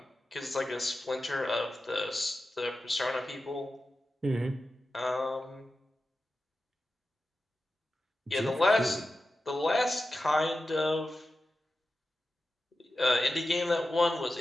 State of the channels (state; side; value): normal; both; correlation 0.92